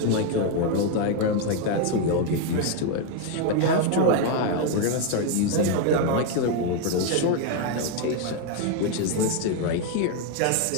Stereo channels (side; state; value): both; different; correlation 0.01